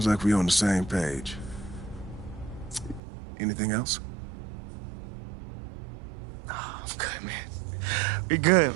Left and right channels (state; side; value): drops out; left; at 3.0 s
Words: like we're on the same page. Anything else? Oh, I'm good, man. We good,